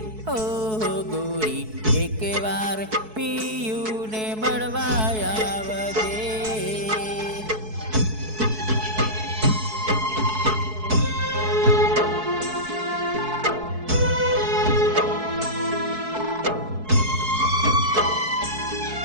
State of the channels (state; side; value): late; left; 4.6 ms